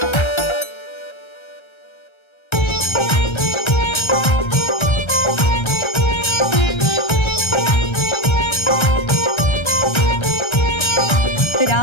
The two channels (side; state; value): right; late; 1.3 ms